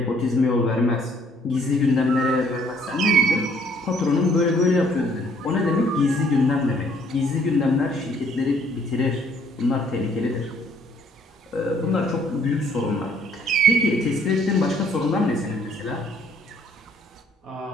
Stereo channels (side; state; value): both; normal; correlation 0.63